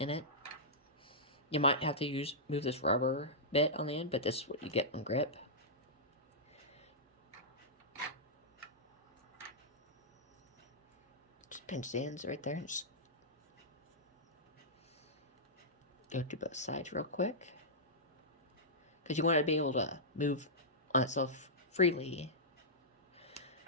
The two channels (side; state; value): both; normal; correlation -0.13